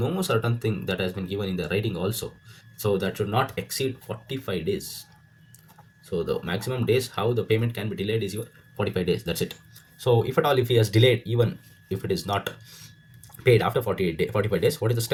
certain thing that has been given in the writing also, so that should not exceed 45 days. So the maximum days how the payment can be delayed is your 45 days. That's it. So if at all, if he has delayed, even if it is not paid after 45 days, what is the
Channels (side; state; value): both; identical; correlation 1.00